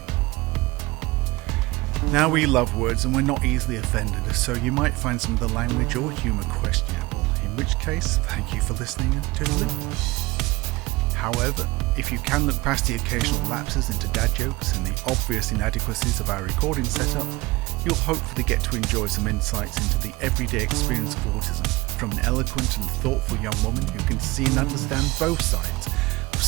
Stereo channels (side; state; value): left; quieter; 21.5 dB